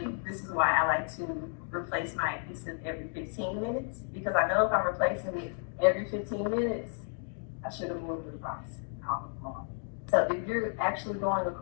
this is why I like to replace my adhesive every 15 minutes, because I know if I'm replacing it every 15 minutes, I should have moved it across. So if you're actually going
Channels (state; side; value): silent; right; 56 dB below the other